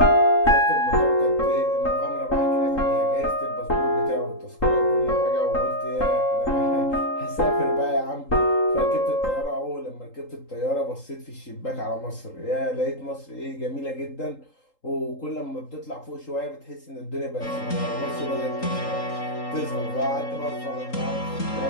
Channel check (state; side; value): late; right; 3.8 ms